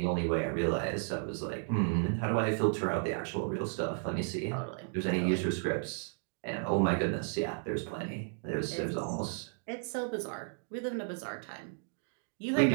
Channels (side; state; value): left; silent; 55 dB below the other